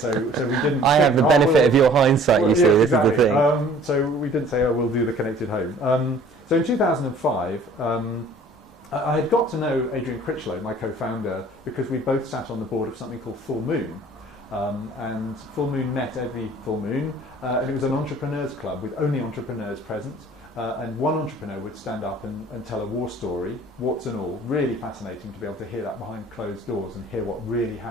so we didn't... I have the benefit of your hindsight, you see, yeah, this exactly. is the thing. So we didn't say, oh, we'll do the connected home. So in 2005, I had got to know Adrian Critchlow, my co-founder, because we both sat on the board of something called Full Moon. And Full Moon met every full moon, and it was an entrepreneurs club with only entrepreneurs present. And one entrepreneur would stand up and tell a war story, warts and all. Really fascinating to be able to hear that behind closed doors and hear what really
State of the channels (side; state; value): both; normal; correlation 0.52